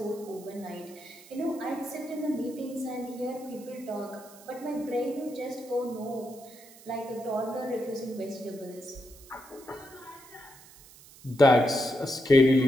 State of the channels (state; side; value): noise; right; hiss, 21 dB below the sound